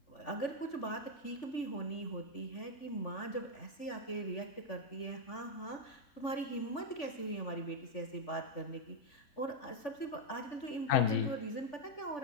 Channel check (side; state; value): right; late; 3.5 ms